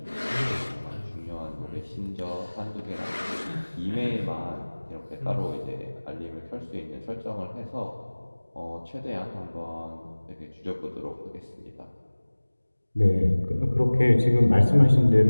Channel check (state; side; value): inverted; both; correlation -1.00